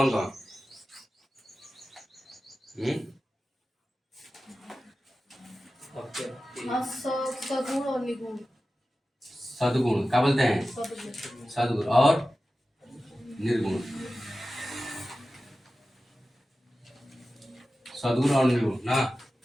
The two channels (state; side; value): normal; both; correlation 0.94